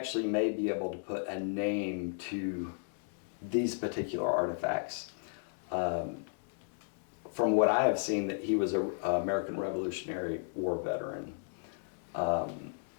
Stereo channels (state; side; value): silent; right; digital silence